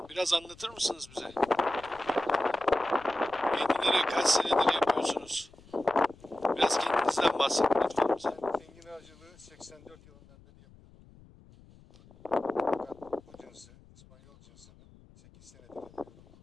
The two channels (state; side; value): noise; left; rumble, 25 dB below the sound